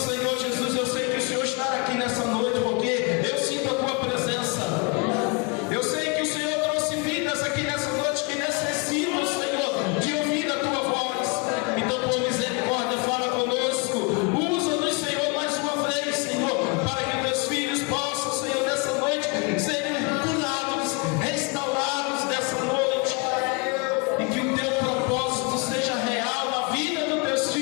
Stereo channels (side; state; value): right; quieter; 31.5 dB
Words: Jesus, eu sei que o Senhor está aqui nessa noite, porque eu sinto a tua presença. Eu sei que o Senhor trouxe vidas aqui nessa noite que necessitam, Senhor, de ouvir a tua voz. Então, por misericórdia, fala conosco. Usa-nos, Senhor, mais uma vez, Senhor, para que teus filhos possam, Senhor, nessa noite serem curados, restaurados nessa noite, e que o teu propósito seja real na vida dos teus